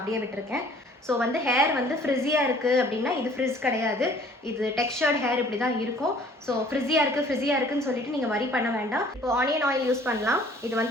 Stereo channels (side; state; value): both; normal; correlation 0.54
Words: விட்டுருக்கேன். ஸோ வந்து ஹேர் வந்து ஃப்ரிஸியாக இருக்குது அப்படின்னா இது ஃப்ரிஸ் கிடையாது, இது டெக்ஸ்சர்ட் ஹேர் இப்படி தான் இருக்கும். ஸோ ஃப்ரிஸியாக இருக்குன்னு சொல்லிட்டு நீங்கள் வரி பண்ண வேண்டாம். இப்போ ஆனியன் ஆயில் யூஸ் பண்ணலாம். இது